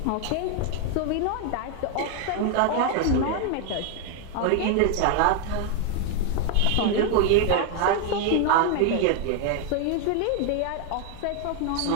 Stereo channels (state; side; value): different; both; correlation 0.00